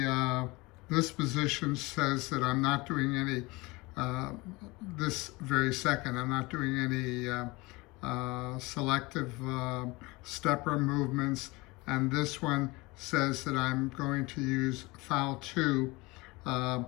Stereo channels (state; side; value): quieter; right; 23.5 dB